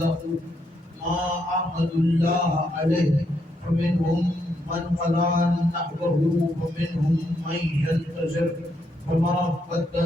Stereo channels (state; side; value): normal; both; correlation 0.77